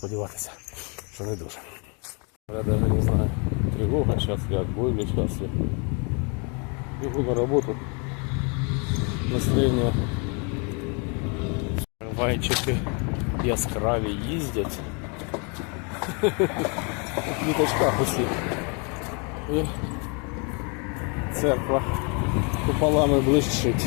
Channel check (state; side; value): quieter; right; 34.5 dB